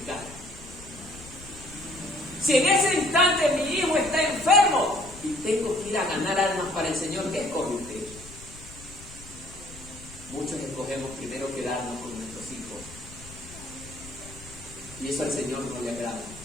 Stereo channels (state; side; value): noise; left; rumble, 17 dB below the sound